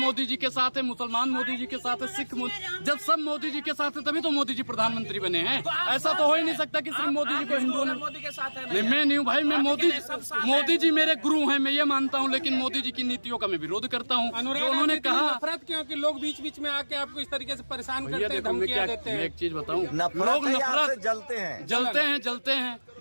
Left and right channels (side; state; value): both; inverted; correlation -1.00